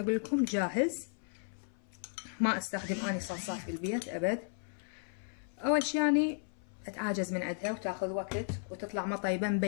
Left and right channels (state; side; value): silent; right; 55 dB below the other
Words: لكم جاهز، ما استخدم اني صلصات بالبيت ابد. اول شي يعني اتعاجز من عندها وتاخذ وقت وتطلع ما طيبة